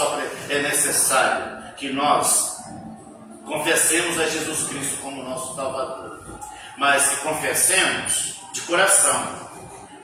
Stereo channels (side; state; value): both; identical; correlation 1.00